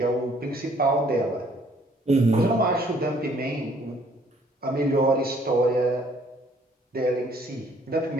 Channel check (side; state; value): both; normal; correlation 0.62